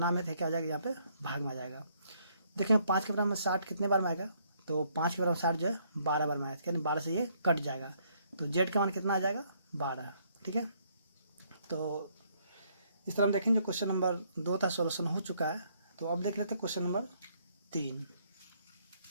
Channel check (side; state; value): both; inverted; correlation -0.69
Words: में थे क्या हो जाएगा, यहाँ पे भाग में आ जाएगा। देखेंगे 5 के बराबर में 60 कितने बार में आएगा, तो 5 के बराबर 60 जो है 12 बार में आएगा, यानी 12 से ये कट जाएगा, तो z का मान कितना आ जाएगा 12। ठीक है, तो इस तरह हम देखेंगे क्वेश्चन नंबर 2 था, सॉल्यूशन हो चुका है। तो अब देख लेते हैं क्वेश्चन नंबर 3।